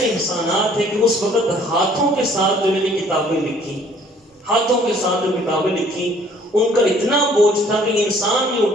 احسانات ہیں کہ اس وقت ہاتھوں کے ساتھ جو میں نے کتابیں لکھی, ہاتھوں کے ساتھ جو کتابیں لکھی, ان کا اتنا بوجھ تھا کہ انسان نہیں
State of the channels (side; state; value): both; normal; correlation 0.58